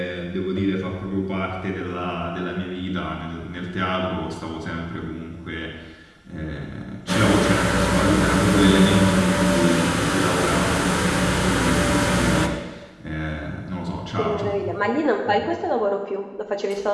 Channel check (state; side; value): identical; both; correlation 1.00